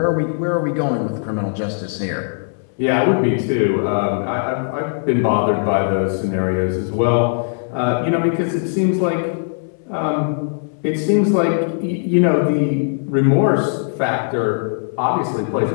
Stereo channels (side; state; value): right; silent; 66 dB below the other